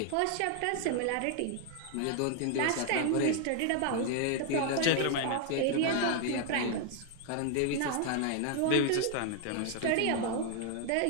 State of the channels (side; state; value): both; different; correlation 0.00